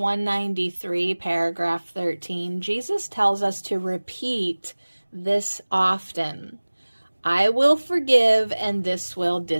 paragraph 13, Jesus tells us to repeat this often. I will forgive and this will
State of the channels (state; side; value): inverted; both; correlation -1.00